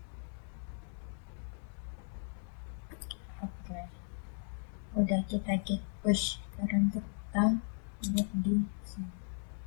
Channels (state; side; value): silent; right; 53 dB below the other